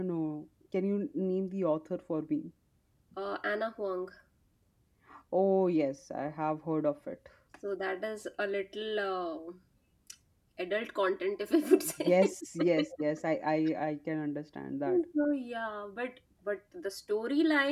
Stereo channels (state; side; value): identical; both; correlation 1.00